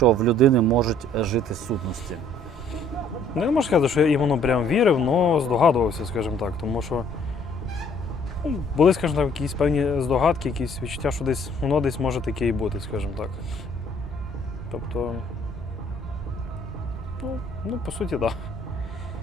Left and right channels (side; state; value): both; normal; correlation 0.60